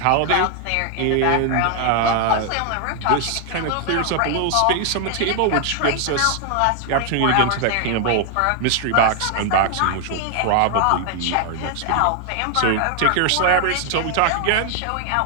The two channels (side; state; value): both; different; correlation 0.00